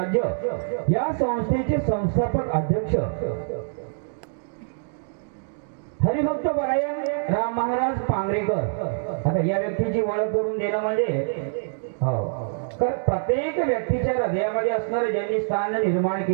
या संस्थेचे संस्थापक अध्यक्ष हरिभक्त परायण राम महाराज पांगरेकर. आता या व्यक्तीची ओळख करून देणं म्हणजे तर प्रत्येक व्यक्तीच्या हृदयामध्ये असणारं ज्यांनी स्थान निर्माण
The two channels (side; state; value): left; silent; digital silence